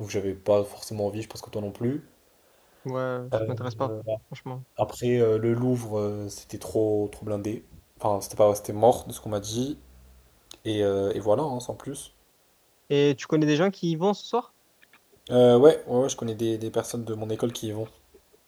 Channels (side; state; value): both; identical; correlation 1.00